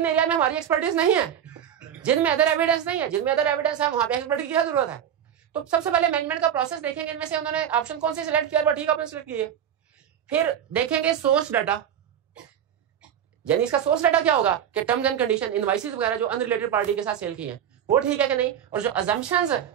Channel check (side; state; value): left; quieter; 9.4 dB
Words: एरिया में हमारी एक्सपर्टीज नहीं है, जिनमें अदर एविडेंस नहीं है, जिनमें अदर एविडेंस है, वहां पे एक्सपर्ट की क्या जरूरत है। तो सबसे पहले मैनेजमेंट का प्रोसेस देखेंगे, इनमें से उन्होंने ऑप्शन कौन से सिलेक्ट किया, ठीक ऑप्शन सिलेक्ट किए। फिर देखेंगे सोर्स डाटा, यानी इसका सोर्स डाटा क्या होगा कि टर्म्स एंड कंडीशन, इनवाइसेस वगैरह जो अनरिलेटेड पार्टी के साथ सेल की हैं वो ठीक है कि नहीं, और जो अजम्पशंस